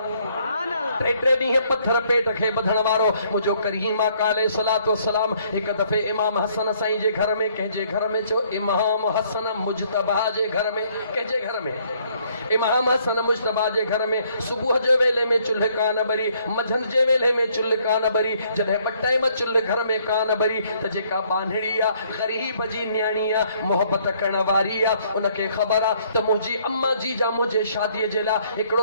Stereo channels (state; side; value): inverted; both; correlation -0.65